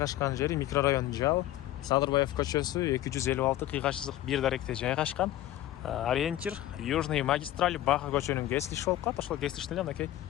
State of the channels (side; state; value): right; quieter; 14.0 dB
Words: жери микрорайон Жал, Садырбаев көчөсү 256-1 даректе жайгашкан. Ориентир Южный магистраль Баха көчөнүн кесилиши болуп калат. Ошол кесилиштин эле мынакей